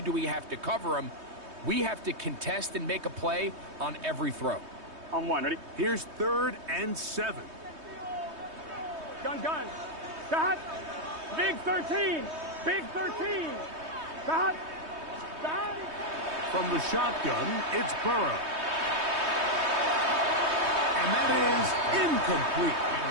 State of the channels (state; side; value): late; left; 3.2 ms